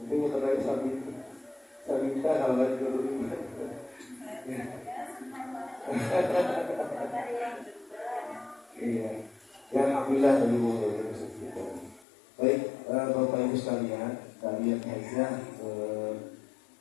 mau terlalu Sabita kalau lagi dulu. Iya, ya alhamdulillah dari kita. Baik, Bapak Ibu sekalian saja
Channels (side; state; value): right; drops out; at 12.1 s